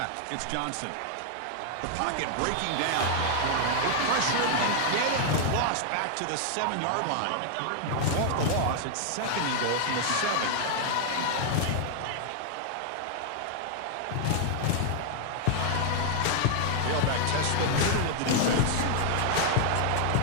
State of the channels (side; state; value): both; different; correlation 0.00